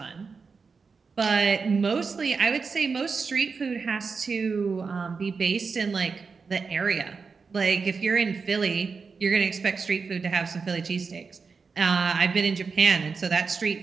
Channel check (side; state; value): left; quieter; 5.0 dB